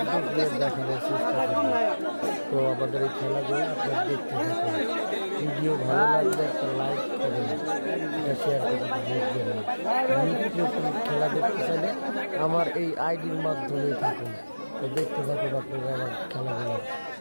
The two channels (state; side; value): inverted; both; correlation -1.00